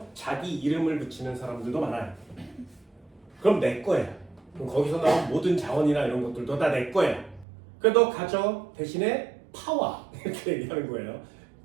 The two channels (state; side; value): drops out; left; at 7.5 s